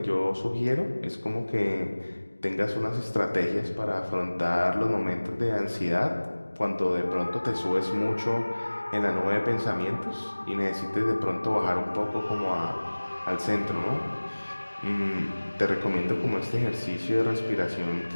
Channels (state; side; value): inverted; both; correlation -1.00